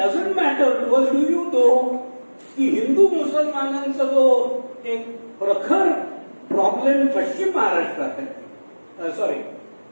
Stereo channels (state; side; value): inverted; both; correlation -1.00